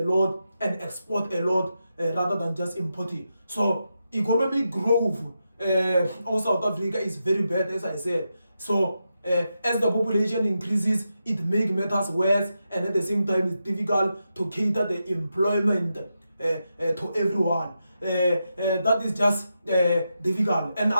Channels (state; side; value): inverted; both; correlation -0.87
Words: and export a lot rather than just importing. So economic growth of South Africa is very bad, as I said. So as the population increases, it makes matters worse, and at the same time it's difficult to cater the employment to everyone. That is just difficult. And